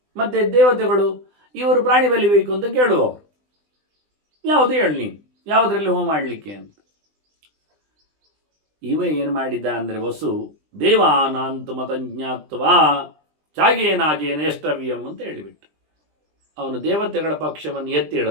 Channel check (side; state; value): left; late; 20 ms